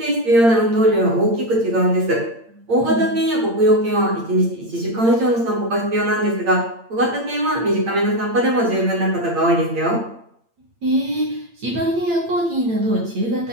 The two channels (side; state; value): left; late; 8.8 ms